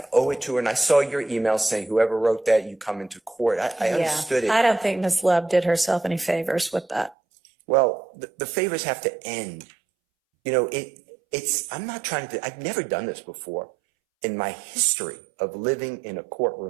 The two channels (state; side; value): drops out; left; at 7.2 s